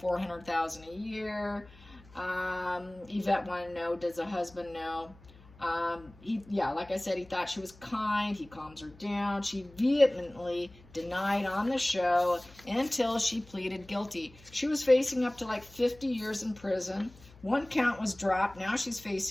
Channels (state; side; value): noise; left; hum, 23 dB below the sound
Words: a year. Yvette wanted to know, does the husband know? Like I said, he thought she was kind. He calms her down. She vehemently denied on the show until she pleaded guilty. She was facing up to like 50 years in prison. One count was dropped. Now she's